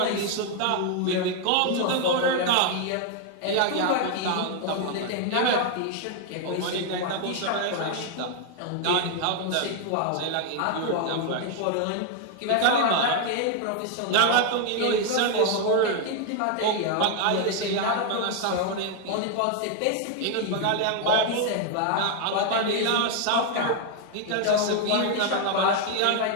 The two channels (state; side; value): different; both; correlation 0.01